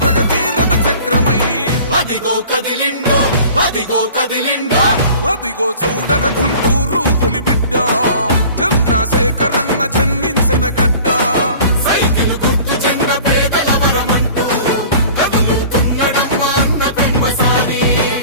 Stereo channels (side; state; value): both; inverted; correlation -0.45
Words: ప్రగతి రథ చక్రమై అదిగో కదిలిండో అదిగో కదిలిండో అదిగో చూడర గుంటూరు పులిబిడ్డ చంద్రశేఖరన్న జన్మించిన గడ్డ సైకిల్ గుర్తు చెండ పేదల వరమంటూ కదులుతున్నడమ్మ అన్న పెమ్మసాని